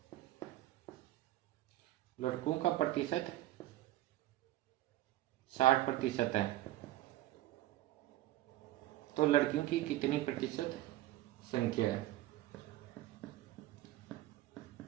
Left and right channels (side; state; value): left; quieter; 15.4 dB